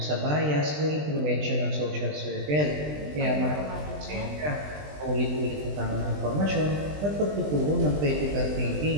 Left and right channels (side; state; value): left; late; 20 ms